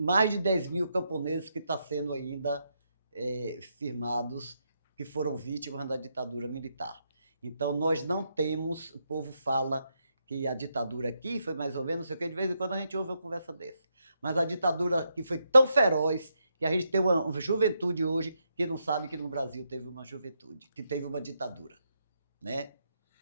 de 10 mil camponeses que estão sendo ainda firmados, que foram vítimas da ditadura militar. Então, nós não temos, o povo fala que a ditadura aqui foi mais ou menos, não sei o que, de vez em quando a gente ouve uma conversa dessa. Mas a ditadura aqui foi tão feroz que a gente tem uma juventude hoje que não sabe que no Brasil teve uma juventude, que teve uma ditadura, né?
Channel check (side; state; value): both; inverted; correlation -0.81